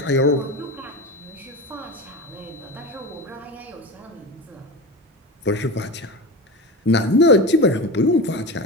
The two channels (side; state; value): both; normal; correlation 0.25